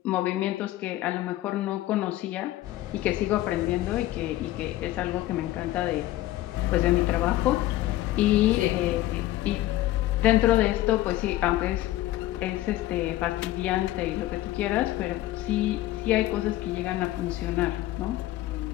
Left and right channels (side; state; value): right; quieter; 15.6 dB